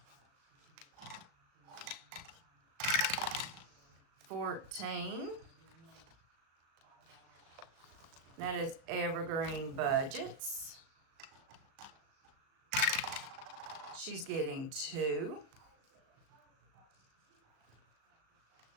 $14. That is evergreen budgets. She's getting 2.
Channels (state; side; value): late; left; 37 ms